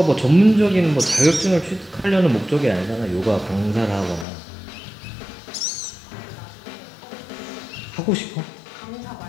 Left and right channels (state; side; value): drops out; right; at 4.2 s